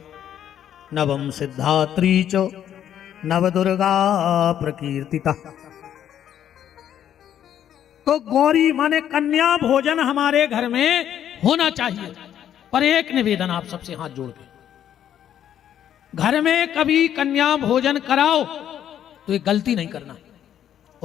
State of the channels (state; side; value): quieter; right; 10.2 dB